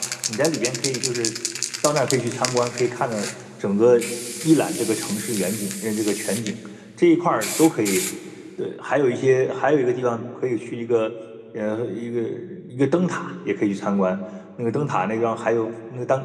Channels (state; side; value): identical; both; correlation 1.00